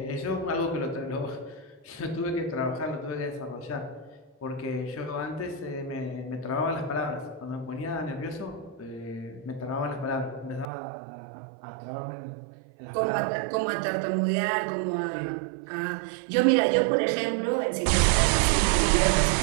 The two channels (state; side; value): drops out; left; at 10.7 s